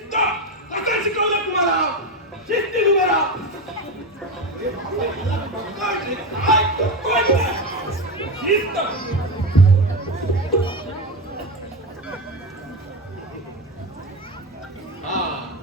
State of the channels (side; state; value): both; normal; correlation 0.16